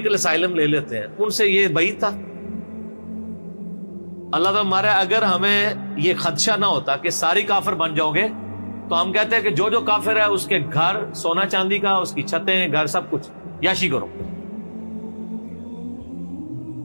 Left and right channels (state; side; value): inverted; both; correlation -1.00